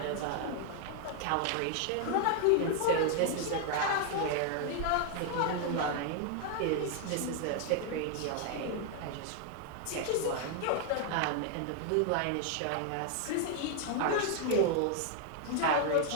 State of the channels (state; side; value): different; both; correlation 0.00